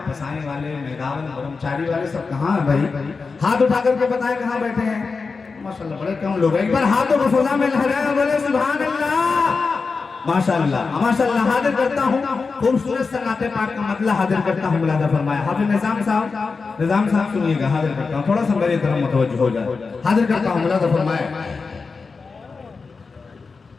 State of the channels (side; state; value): right; quieter; 4.6 dB